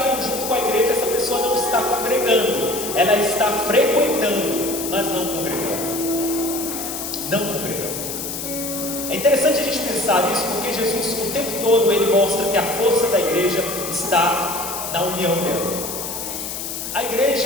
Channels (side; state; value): left; noise; hiss, 6 dB below the sound